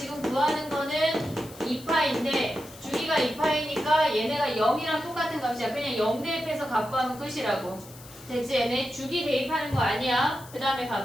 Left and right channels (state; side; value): noise; left; hiss, 19 dB below the sound